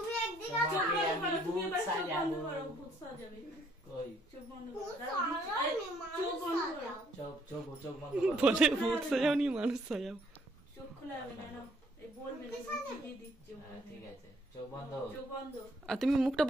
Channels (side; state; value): both; normal; correlation 0.65